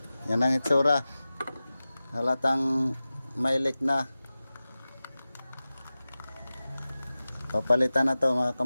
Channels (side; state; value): both; inverted; correlation -0.96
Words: Yan ang itsura. Halatang may leak na. Papalitan na to mga